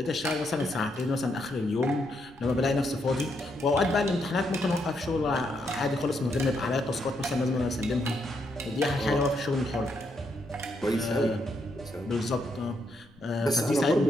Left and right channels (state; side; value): noise; left; rumble, 28 dB below the sound